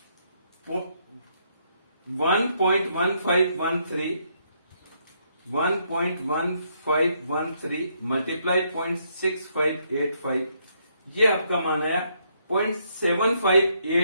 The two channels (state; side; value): inverted; both; correlation -0.73